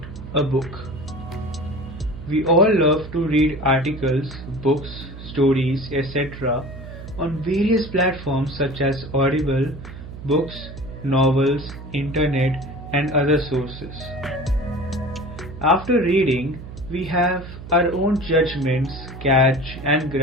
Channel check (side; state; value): right; noise; hum, 13 dB below the sound